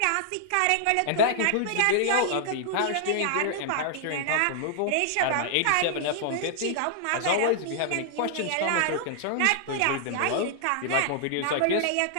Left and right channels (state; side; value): different; both; correlation -0.01